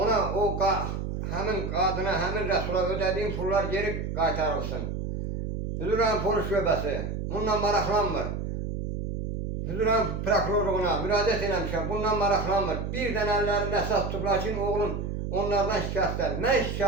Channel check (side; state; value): right; noise; hum, 4 dB below the sound